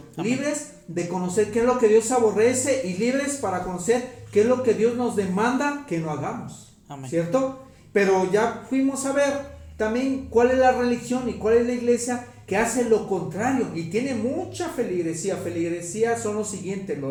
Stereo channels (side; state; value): both; identical; correlation 1.00